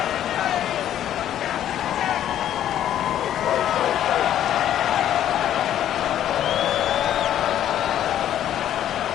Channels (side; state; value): right; quieter; 11.2 dB